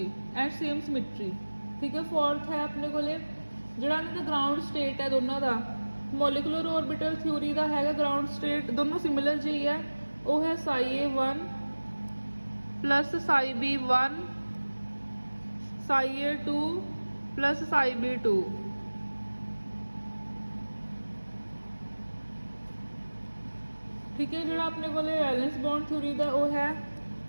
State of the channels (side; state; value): both; inverted; correlation -1.00